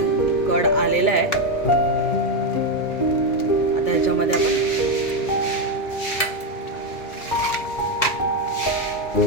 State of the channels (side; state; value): right; late; 2.3 ms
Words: कड आलेला आहे. आता ह्याच्यामध्ये आपण